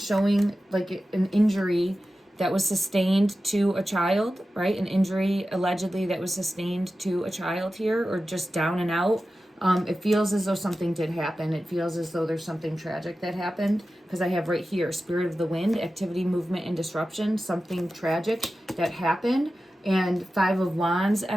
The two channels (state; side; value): normal; both; correlation 0.94